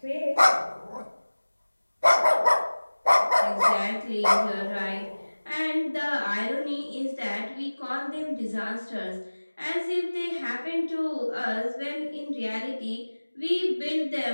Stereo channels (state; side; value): inverted; both; correlation -1.00